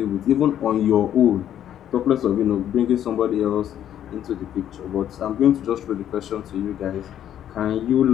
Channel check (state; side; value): quieter; right; 10.7 dB